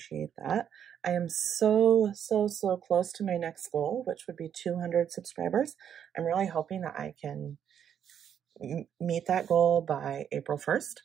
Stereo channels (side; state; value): left; quieter; 8.8 dB